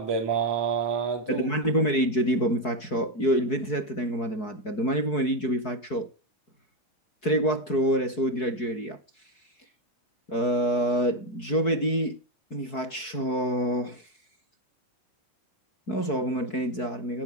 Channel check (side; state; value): right; late; 4.6 ms